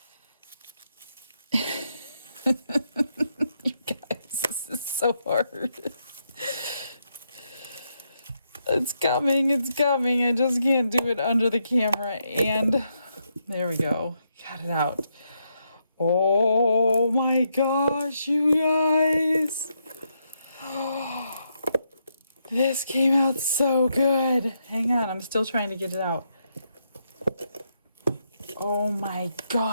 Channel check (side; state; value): both; inverted; correlation -0.80